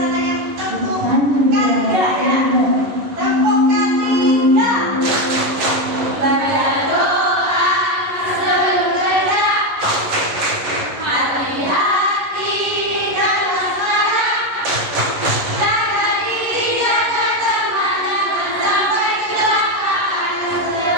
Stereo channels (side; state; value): left; late; 11 ms